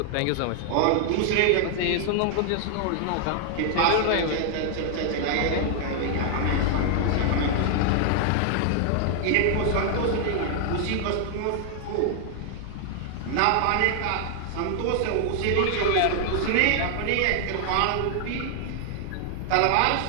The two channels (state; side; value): different; both; correlation 0.00